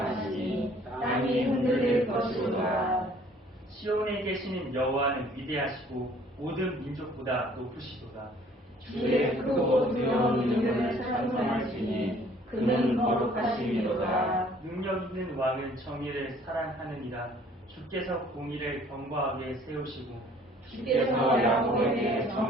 땅이 흔들릴 것이로다. 시온에 계시는 여호와는 위대하시고 모든 민족보다 높으시도다. 주의 크고 두려운 이름을 찬송하시니 그는 거룩하시리로다. 능력 있는 왕은 정의를 사랑하느니라. 주께서 공의를 경과 위에 세우시고 주께서 야곱에게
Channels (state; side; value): normal; both; correlation 0.56